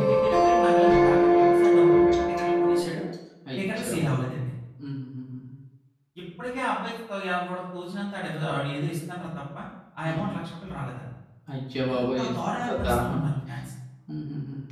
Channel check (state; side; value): identical; both; correlation 1.00